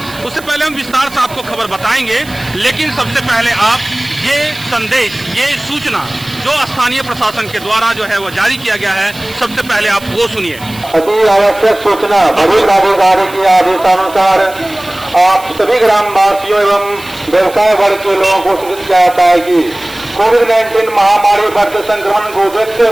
उससे पहले हम विस्तार से आपको खबर बताएंगे, लेकिन सबसे पहले आप ये संदेश, ये सूचना जो स्थानीय प्रशासन के द्वारा जो है वो जारी किया गया है, सबसे पहले आप वो सुनिए। अति आवश्यक सूचना। वरिष्ठ अधिकारी के आदेशानुसार आप सभी ग्रामवासियों एवं व्यवसाय वर्ग के लोगों को सूचित किया जाता है कि कोविड-19 महामारी बढ़ते संक्रमण को देखते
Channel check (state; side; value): noise; right; hiss, 18 dB below the sound